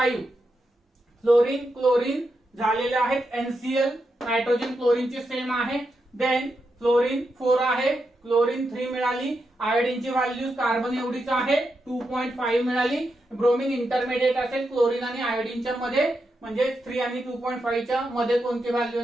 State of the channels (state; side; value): normal; both; correlation 0.85